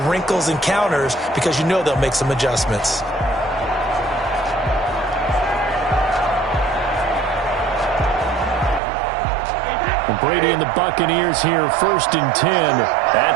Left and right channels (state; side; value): drops out; left; at 8.8 s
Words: wrinkles and counters because you know they'll make some adjustments. Brady and the Buccaneers here first and 10